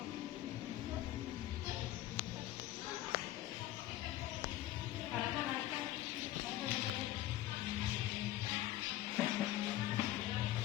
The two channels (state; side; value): quieter; right; 14.7 dB